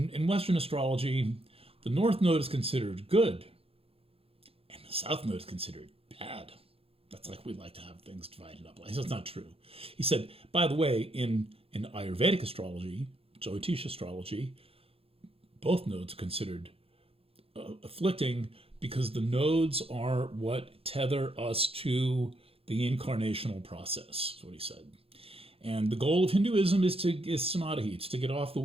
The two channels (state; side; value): late; left; 0.28 ms